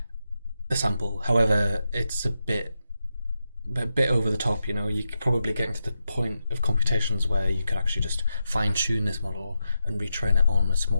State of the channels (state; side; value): inverted; both; correlation -0.87